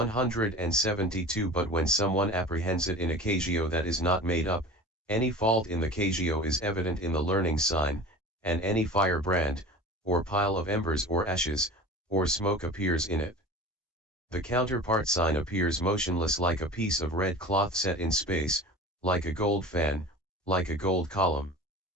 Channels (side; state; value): both; normal; correlation 0.37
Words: But when someone apprehends it in a kasioa that is not made up, any fault in the kasioa is evident in the learning sign, and any firebrand, or pile of embers or ashes, or smoke appears in it. The counterpart sign appears motionless like a piece of red cloth set in space, like a gold fan, like a gold column.